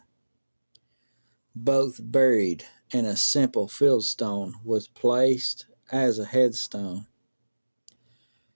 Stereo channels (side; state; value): both; inverted; correlation -1.00